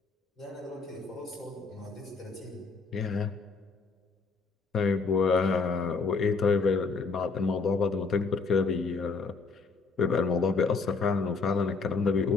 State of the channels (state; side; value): quieter; right; 4.5 dB